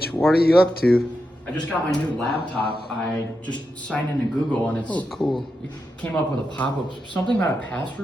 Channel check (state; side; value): normal; both; correlation 0.87